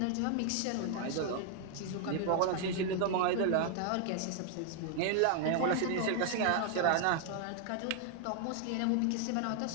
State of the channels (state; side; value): different; both; correlation 0.00